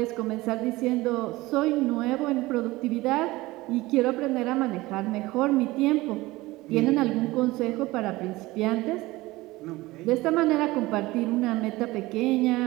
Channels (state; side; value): quieter; left; 19.7 dB